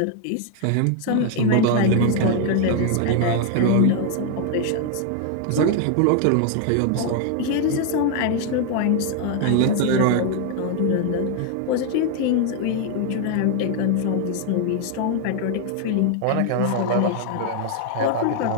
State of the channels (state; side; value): different; both; correlation 0.00